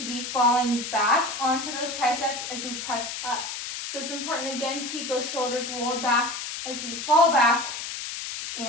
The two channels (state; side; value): noise; left; hiss, 6 dB below the sound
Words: be falling back onto those triceps as we press up. So it's important again to keep those shoulders rolled back as we fall back